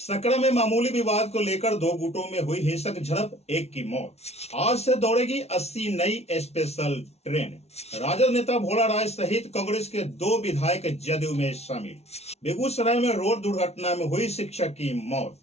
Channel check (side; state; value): right; late; 0.31 ms